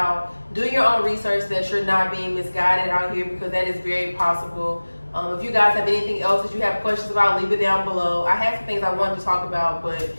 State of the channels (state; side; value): inverted; both; correlation -1.00